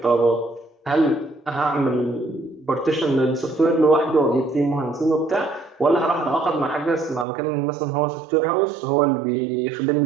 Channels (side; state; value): left; drops out; at 7.2 s